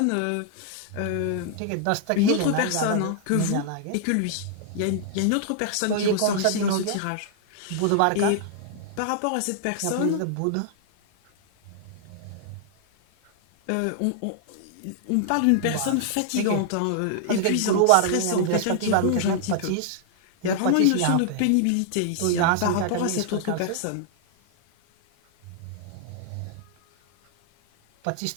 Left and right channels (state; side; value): different; both; correlation -0.01